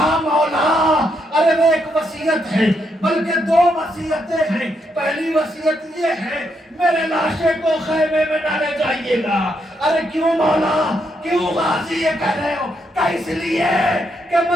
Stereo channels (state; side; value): normal; both; correlation 0.78